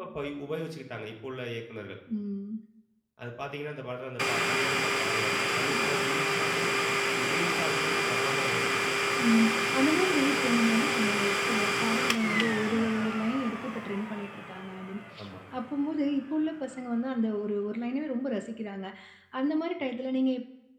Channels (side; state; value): both; identical; correlation 1.00